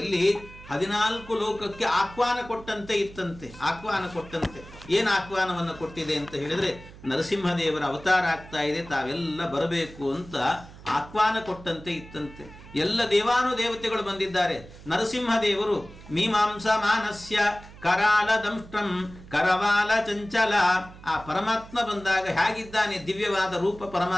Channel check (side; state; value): right; noise; hum, 18 dB below the sound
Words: 14 ಲೋಕಕ್ಕೆ ಆಹ್ವಾನ ಕೊಟ್ಟಂತೆ ಇತ್ತಂತೆ. ಆಹ್ವಾನ ಕೊಟ್ಟಂತೆ. ಏನು ಆಹ್ವಾನವನ್ನು ಕೊಟ್ಟಿದೆ ಅಂತ ಹೇಳಿದ್ರೆ, ನರಸಿಂಹದೇವರ ಅವತಾರ ಆಗ್ತಾ ಇದೆ, ತಾವೆಲ್ಲ ಬರಬೇಕು ಅಂತ ಆಹ್ವಾನ ಕೊಟ್ಟಂತೆ ಇತ್ತಂತೆ. ಎಲ್ಲ ದೇವಾನುದೇವತೆಗಳು ಬಂದಿದ್ದಾರೆ. ನರಸಿಂಹದೇವರು ಮೀಮಾಂಸ ಮಾನಸ್ಯ ಕರಾಲ ದಂಷ್ಟ್ರಂ ಕರವಾಲ ಚಂಚಲ. ಆ ಪರಮಾತ್ಮ ಬಂದಾಗ ಹೇಗಿದ್ದಾನೆ, ದಿವ್ಯವಾದ ರೂಪ